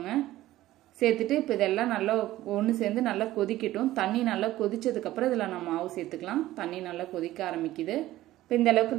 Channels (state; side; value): quieter; left; 15.4 dB